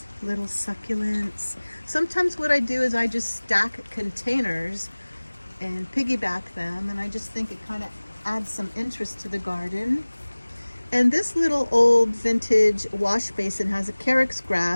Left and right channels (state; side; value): inverted; both; correlation -1.00